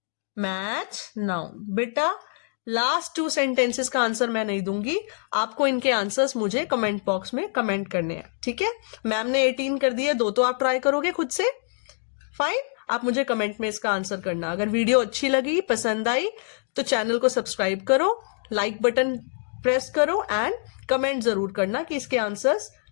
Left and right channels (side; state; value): right; silent; digital silence